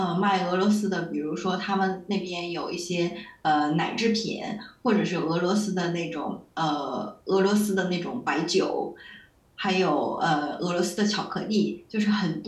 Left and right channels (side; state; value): both; identical; correlation 1.00